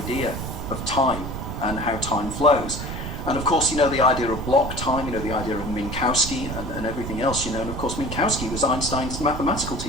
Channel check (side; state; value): right; noise; rumble, 6 dB below the sound